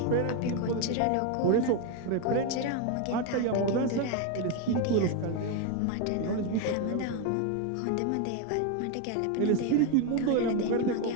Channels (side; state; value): both; different; correlation 0.02